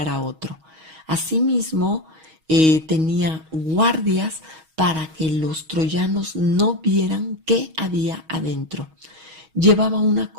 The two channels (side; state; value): left; late; 6.3 ms